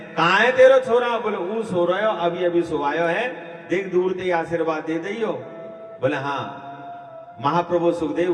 कहाँ है तेरो छोरा? बोले वो सो रहे हो, अभी अभी सोवायो है, देख दूर ते आशीर्वाद दे दियो। बोले हाँ। महाप्रभु सुखदेव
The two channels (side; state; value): both; identical; correlation 1.00